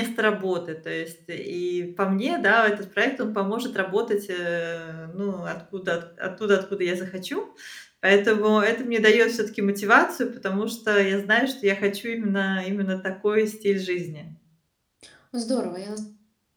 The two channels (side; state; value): both; identical; correlation 1.00